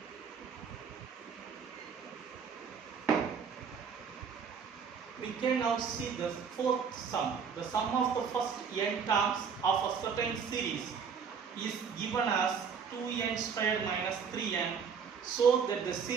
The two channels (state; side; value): quieter; left; 6.5 dB